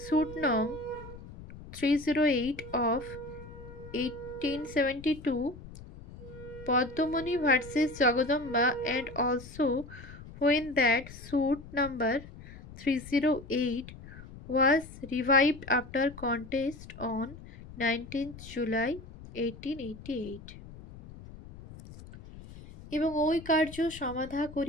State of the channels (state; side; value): noise; left; rumble, 16 dB below the sound